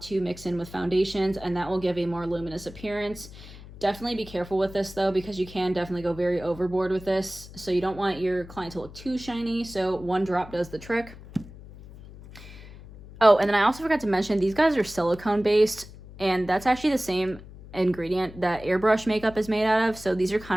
to mix in with foundations, and that will give a more luminous appearance. Definitely be careful with this though, because you can definitely go very overboard with this. So you don't want your client to look too shiny. So one drop does the trick. Oh, and then I also forgot to mention, these guys are silicone based, and that's actually the same ingredient that airbrush makeup is made out of. So these are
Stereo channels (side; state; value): left; noise; hum, 17 dB below the sound